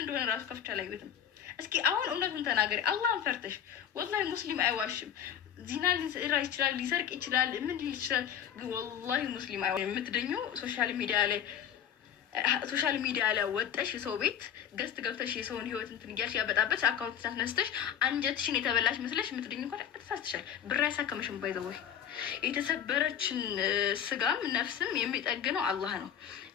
እንደሆነ ራሱ ከፍቼ አላየሁትም። እስኪ አሁን እውነቱን ተናገሪ፣ አላህን ፈርተሽ። ወላሂ ሙስሊም አይዋሽም። ዚና ሊሰራ ይችላል፣ ሊሰርቅ ይችላል፣ ምን ይችላል። ወላሂ ሙስሊም አይዋሽም። የምትደኙ ሶሻል ሚዲያ ላይ ወጠሽ የሰው ቤት ገስት ገብተሽ የሰውን ህይወት እንትን እያልሽ ያበጣበች አካውንት ታስነስተሽ አንጀትሽን የተበላሽ መስለሽ የምትደኙ እንኳን ተሳስተሻል። ብር ያሳከመሽም ባይዘወይ የተሰበረችን ስጋም ነፍስም የሚጠግነው አላህ ነው።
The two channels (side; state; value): right; quieter; 9.2 dB